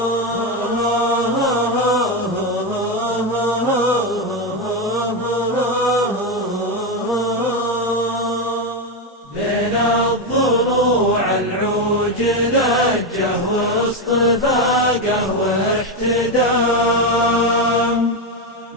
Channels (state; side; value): normal; both; correlation 0.09